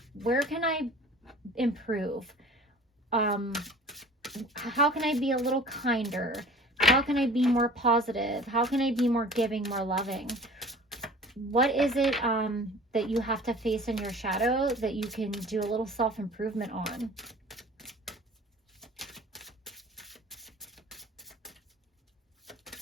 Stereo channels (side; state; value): both; normal; correlation 0.45